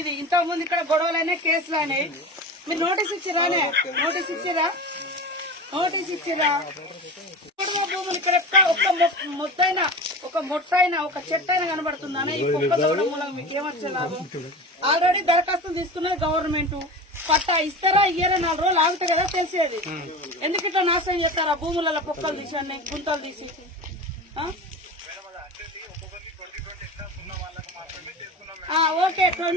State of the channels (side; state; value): both; normal; correlation 0.31